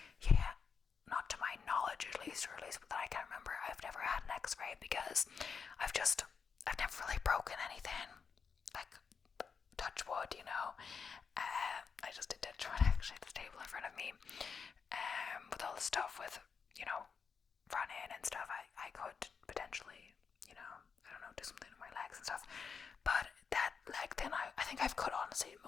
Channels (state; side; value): quieter; right; 5.9 dB